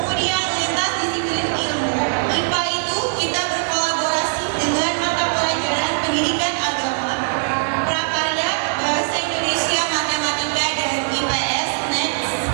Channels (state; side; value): silent; left; 65 dB below the other